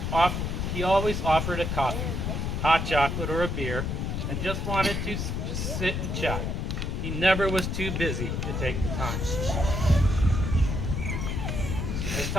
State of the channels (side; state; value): left; noise; rumble, 1 dB below the sound